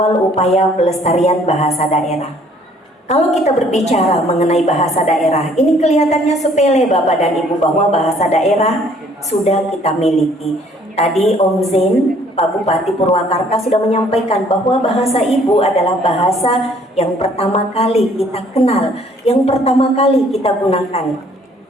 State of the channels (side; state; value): both; normal; correlation 0.60